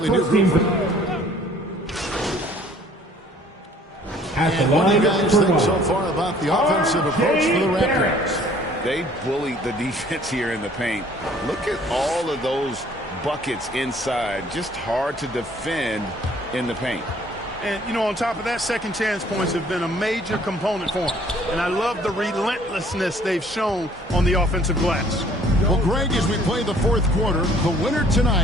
new group. And what do you guys think so far about the offensive approach for the Raptors? They bullied the defense here in the paint. Look at all of those buckets inside. Just hard to defend in the paint. And, you know, on top of that, second chance points have been a major component for them. And I love the relentlessness they've shown on the offensive glass. Well, Greg, as we play the fourth quarter, the winner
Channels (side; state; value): both; normal; correlation 0.57